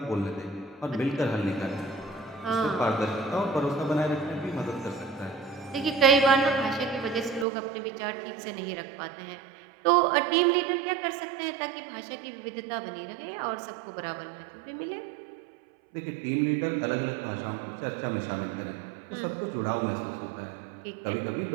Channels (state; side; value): drops out; left; at 7.5 s